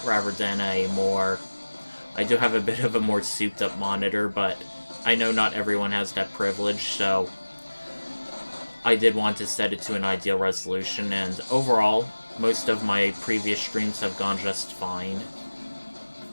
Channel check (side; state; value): both; inverted; correlation -1.00